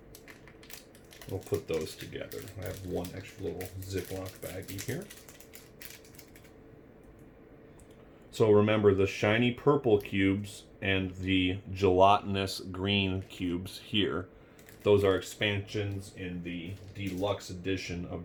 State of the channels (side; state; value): both; identical; correlation 1.00